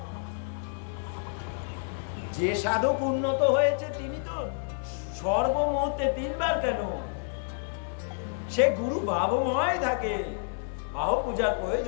যে সাধক উন্নত হয়েছে তিনি তো সর্বমুহূর্তে 3 বার কেন, সে গুরু ভাবময় থাকে। বাহু পূজার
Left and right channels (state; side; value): silent; right; digital silence